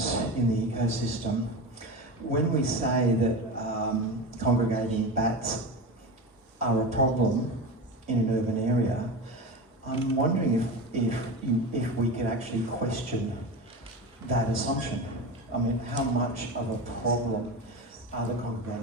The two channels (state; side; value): normal; both; correlation 0.25